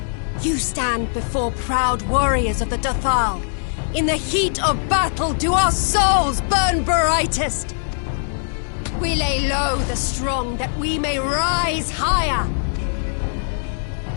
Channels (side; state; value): right; silent; digital silence